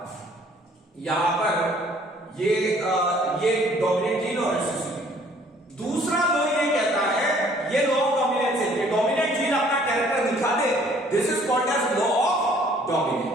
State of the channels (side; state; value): both; normal; correlation 0.58